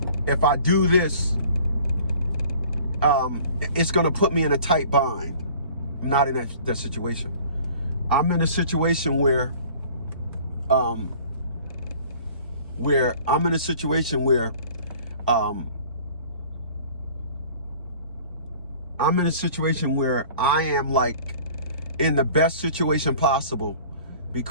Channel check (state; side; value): inverted; both; correlation -0.48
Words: if I do this, it's going to put me in a tight bind. I'm not in that situation. I'm in a situation where I'm in a situation where I am like in the best situation possible